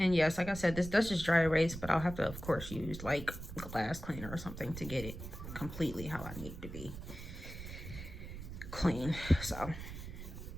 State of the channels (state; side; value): noise; right; rumble, 10 dB below the sound